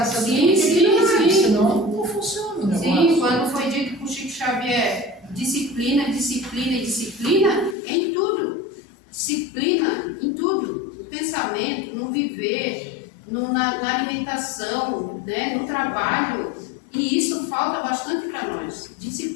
essa Sim. senão não funciona o negócio. Sim, quando foi dito por Chico Xavier, disciplina em tudo. Disciplina em tudo. pensamento, no viver, na alimentação, né, no trabalho. E isso falta bastante para nós,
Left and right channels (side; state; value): right; drops out; at 7.8 s